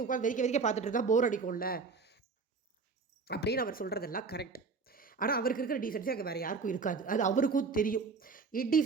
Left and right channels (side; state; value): left; quieter; 4.6 dB